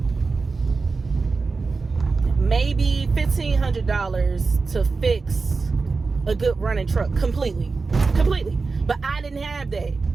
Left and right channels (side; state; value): left; quieter; 4.2 dB